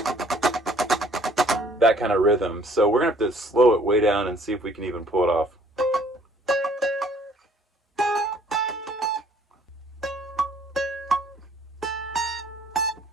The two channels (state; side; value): normal; both; correlation 0.59